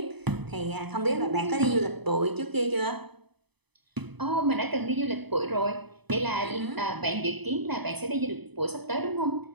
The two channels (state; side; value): late; left; 0.99 ms